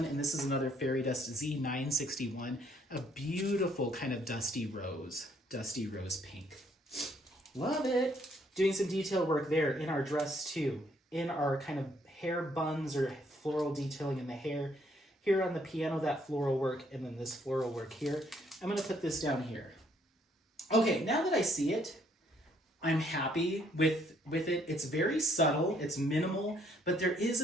and this is another fairy dust, Z961, a beautiful kind of dusty rose pink. Love it. Doing some detail work there in our dress too, in our kind of hair buns or floral detailing in the hair. Here on the piano, that floral work, and then this floral work here. I'm gonna put this down here. Okay, now that I see it, I'm happy with it. It's very subtle, it's minimal, but there is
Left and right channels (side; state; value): both; normal; correlation 0.67